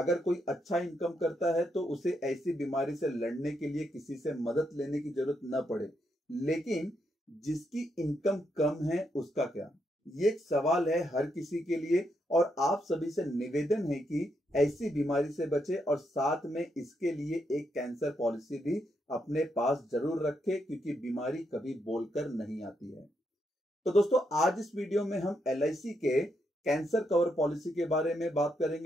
कोई अच्छा इनकम करता है तो उसे ऐसी बीमारी से लड़ने के लिए किसी से मदद लेने की जरूरत न पड़े, लेकिन जिसकी इनकम कम है उसका क्या? ये एक सवाल है हर किसी के लिए, और आप सभी से निवेदन है कि ऐसी बीमारी से बचे और साथ में इसके लिए एक कैंसर पॉलिसी भी अपने पास जरूर रखें, क्योंकि बीमारी कभी बोलकर नहीं आती है। तो दोस्तों, आज इस वीडियो में हम LIC के कैंसर कवर पॉलिसी के बारे में बात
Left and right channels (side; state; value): both; normal; correlation 0.79